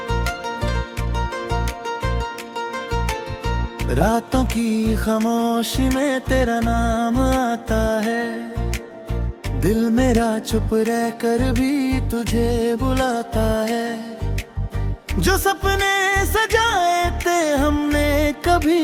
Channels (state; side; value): identical; both; correlation 1.00